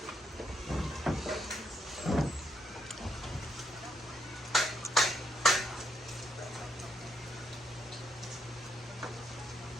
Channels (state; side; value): normal; both; correlation 0.77